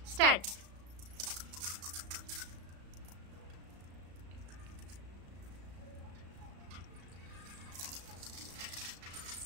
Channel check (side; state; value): left; late; 35 ms